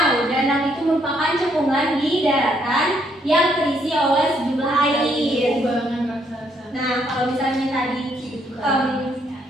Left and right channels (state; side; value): normal; both; correlation 0.71